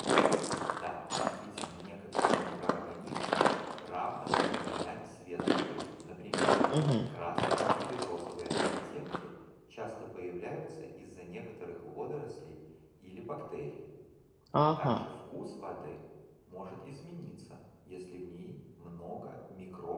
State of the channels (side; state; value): both; identical; correlation 1.00